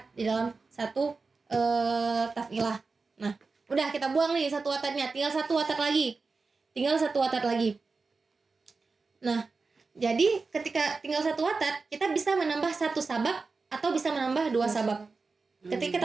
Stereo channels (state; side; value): quieter; left; 4.2 dB